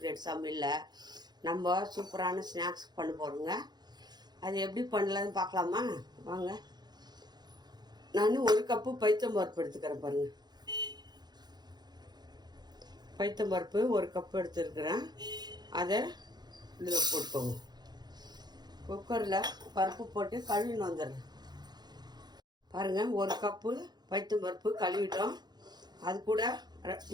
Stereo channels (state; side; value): late; left; 0.20 ms